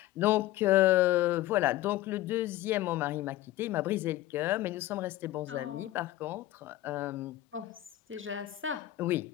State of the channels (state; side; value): quieter; right; 15.2 dB